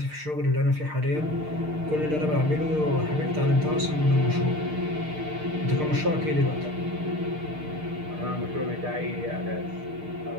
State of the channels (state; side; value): late; left; 6.6 ms